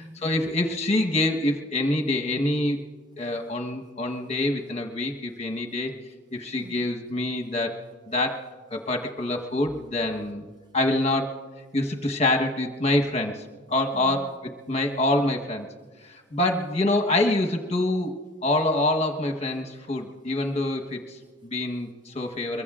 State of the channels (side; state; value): both; normal; correlation 0.47